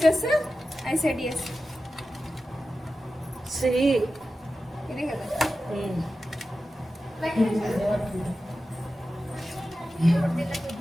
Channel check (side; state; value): both; normal; correlation 0.93